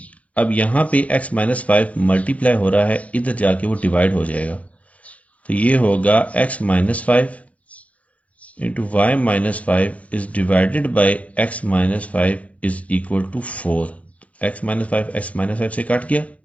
अब यहां पे x माइनस 5 मल्टीप्लाई हो रहा है, इधर जाके वो डिवाइड हो जाएगा। तो ये होगा x minus 5 into y minus 5 is divided by x minus 5 is equal to 4। x minus 5 से काट गया,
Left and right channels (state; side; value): late; right; 0.066 ms